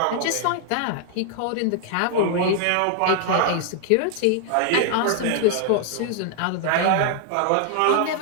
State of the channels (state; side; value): different; both; correlation 0.00